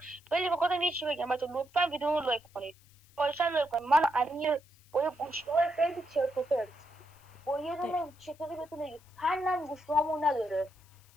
ولی بخاطر یه چی بگم بچه‌ها، لطفا ویدیو رو لایک کنید. خواهشاً لایک کنید. من امیر با یه گوشی‌های خیلی چرت و پرت، با یه دونه چطوری بهتون بگم فنم گوشی‌هامون نداره.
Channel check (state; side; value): noise; left; hiss, 28 dB below the sound